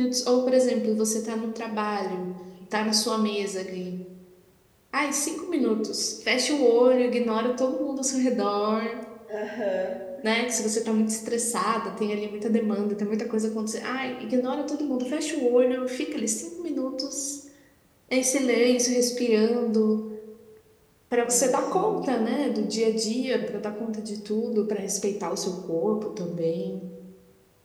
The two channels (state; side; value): identical; both; correlation 1.00